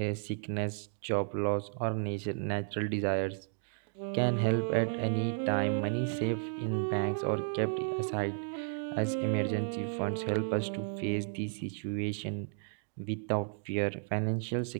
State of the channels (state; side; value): silent; left; digital silence